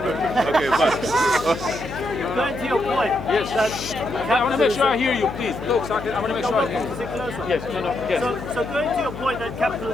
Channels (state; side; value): noise; left; hum, 11 dB below the sound